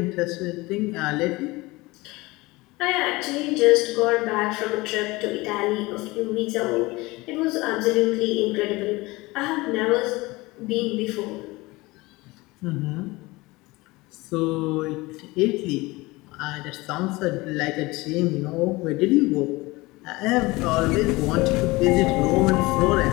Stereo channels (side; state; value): right; quieter; 21.9 dB